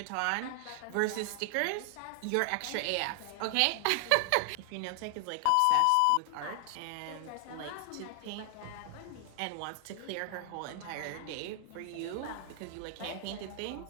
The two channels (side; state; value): both; different; correlation 0.00